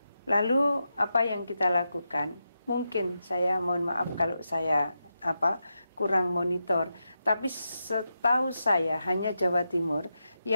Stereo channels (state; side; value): inverted; both; correlation -0.87